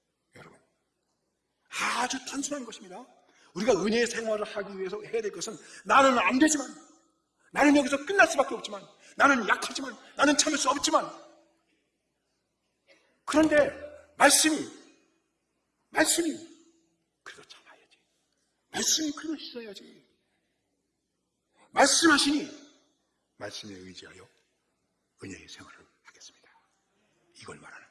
여러분 아주 단순한 것입니다. 우리가 은혜의 생활을 하기 위해서 해야 될 것은 나는 안 되지만 나는 여기서 끝날 수밖에 없지만 나는 약하지만 나는 참을 수 없지만 그런데 말씀이 그래도 참아야지. 말씀이 그래도 있어야지. 말씀하시니 말씀에 의지하여 은혜의 생활을 하겠습니다. 이걸 말하는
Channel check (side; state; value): both; identical; correlation 1.00